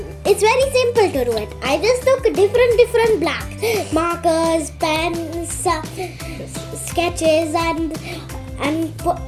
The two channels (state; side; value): identical; both; correlation 1.00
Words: it's very simple to do it. I just took different blacks, markers, pens, sketches, and